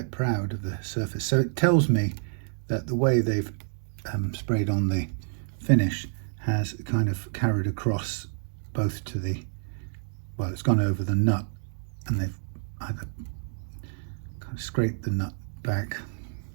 proud of the surface. So it tells me that the way they've sprayed on the finish has kind of carried across both to the, well, it's gone over the nut, and they've either kind of scraped the nut back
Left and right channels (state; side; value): silent; left; digital silence